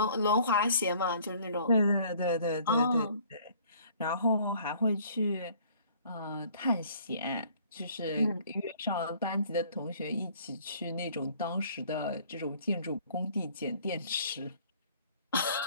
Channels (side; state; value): both; inverted; correlation -0.56